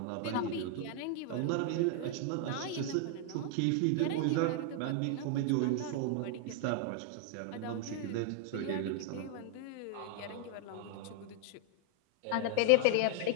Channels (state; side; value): different; both; correlation 0.00